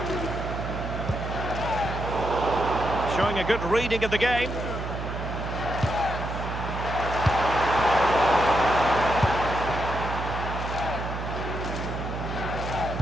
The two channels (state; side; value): noise; right; hum, 5 dB below the sound